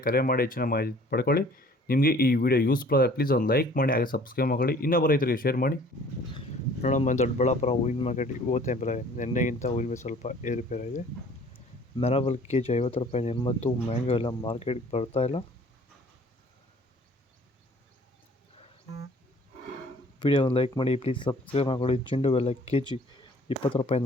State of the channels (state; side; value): normal; both; correlation 0.53